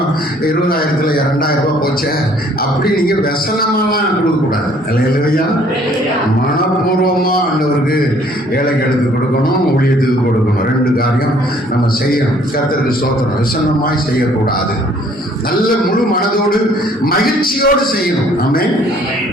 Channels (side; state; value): both; normal; correlation 0.59